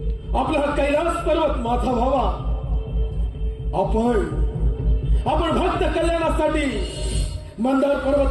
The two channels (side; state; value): both; identical; correlation 1.00